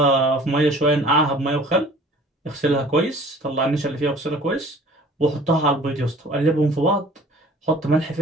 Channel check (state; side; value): normal; both; correlation 0.49